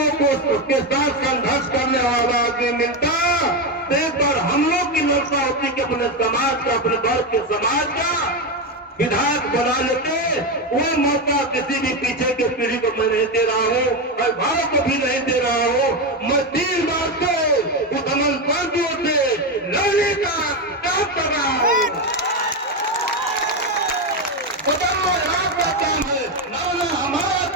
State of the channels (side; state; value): both; normal; correlation 0.11